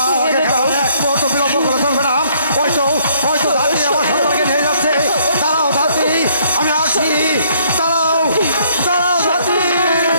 কারণে এক মুহূর্ত বিলম্ব করে চলবে না। হয়তো ধাত্রী আমার সন্তানকে নিয়ে যাচ্ছে। দাঁড়াও ধাত্রী, আমি আসি। দাঁড়াও দাঁড়াও ধাত্রী,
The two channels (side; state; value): both; inverted; correlation -0.65